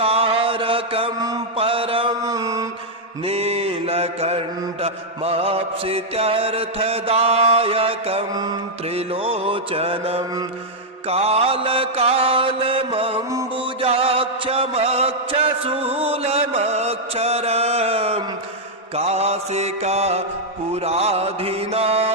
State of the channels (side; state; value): both; normal; correlation -0.03